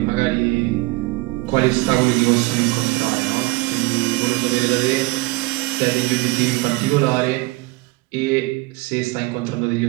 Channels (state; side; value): quieter; left; 22.2 dB